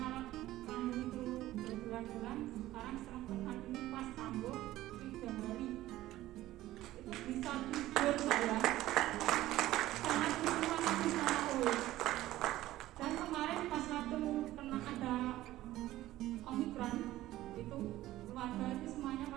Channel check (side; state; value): left; quieter; 15.4 dB